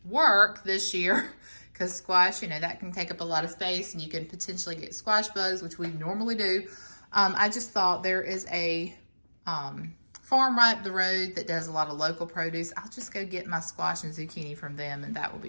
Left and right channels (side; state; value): both; inverted; correlation -1.00